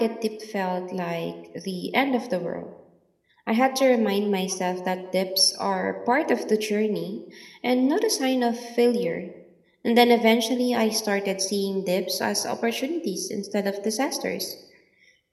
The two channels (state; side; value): identical; both; correlation 1.00